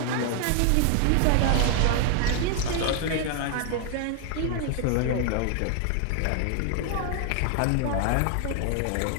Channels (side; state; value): both; different; correlation 0.00